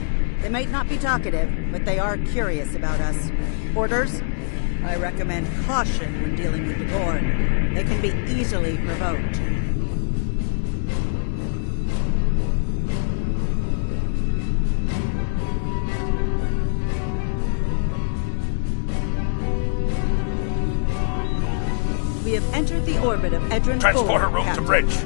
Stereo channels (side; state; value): right; silent; digital silence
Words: They might not be talkative, but they are curious about us. Orders? I recommend caution when dealing with the Gorn. They can be easily provoked. We have entered the orbit of Edron 4, Transporter room Captain. to bridge.